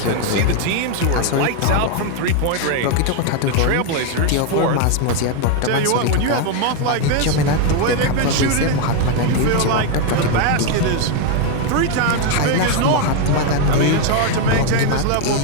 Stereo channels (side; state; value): both; different; correlation 0.01